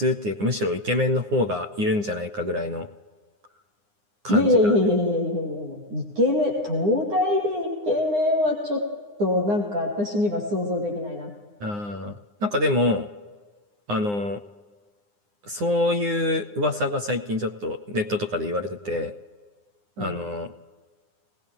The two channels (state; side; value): late; left; 9.7 ms